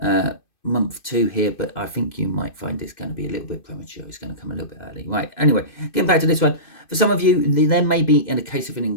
month 2 here, but I think you might find it's going to be a little bit premature. It's going to come a little bit early. Right, anyway, getting back to this one. For some of you, there may be, in a case of an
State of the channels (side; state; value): right; late; 2.6 ms